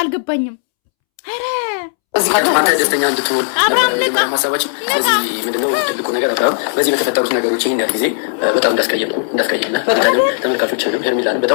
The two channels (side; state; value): right; silent; 69 dB below the other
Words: አልገባኝም። ኧረ እዚህ አንተ ደስተኛ እንድትሆን ሀሳባችን። ስለዚህ ምንድነው ትልቁ ነገር አብርሃም በዚህ በተፈጠሩት ነገሮች ይህን ያህል ጊዜ በጣም እንዳስቀየምና ተመልካቾችንም ሄርሜላንም